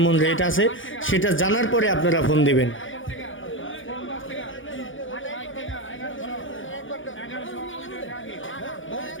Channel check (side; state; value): right; late; 0.57 ms